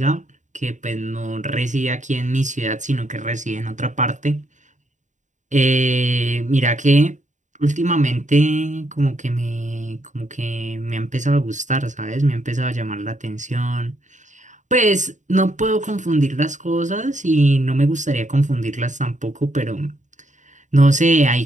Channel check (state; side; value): late; left; 0.36 ms